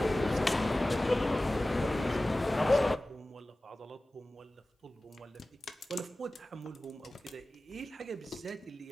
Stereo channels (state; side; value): normal; both; correlation 0.97